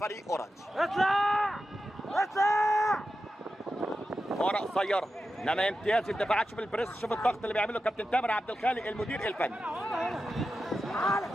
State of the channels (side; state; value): both; normal; correlation 0.91